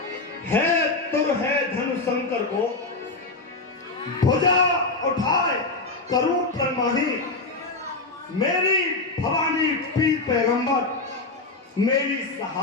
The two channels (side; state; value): right; quieter; 3.4 dB